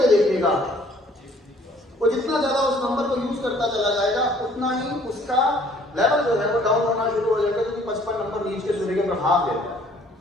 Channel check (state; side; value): normal; both; correlation 0.58